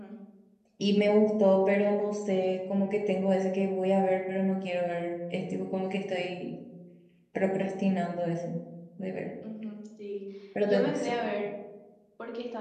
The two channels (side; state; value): both; identical; correlation 1.00